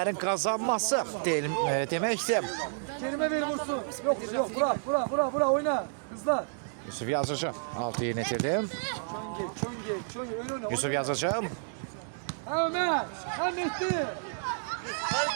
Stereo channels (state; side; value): silent; left; digital silence